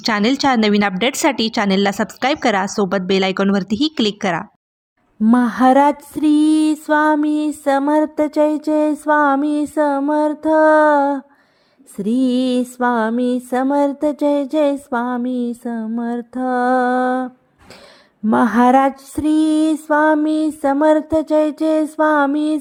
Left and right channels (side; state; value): both; identical; correlation 1.00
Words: चॅनेलच्या नवीन अपडेट्ससाठी चॅनेलला सबस्क्राईब करा. सोबत बेल आयकॉनवरतीही क्लिक करा. महाराज श्री स्वामी समर्थ, जय जय स्वामी समर्थ. श्री स्वामी समर्थ, जय जय स्वामी समर्थ. महाराज श्री स्वामी समर्थ, जय जय स्वामी